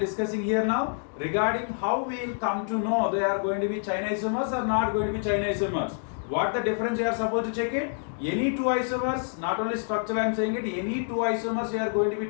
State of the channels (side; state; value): right; silent; digital silence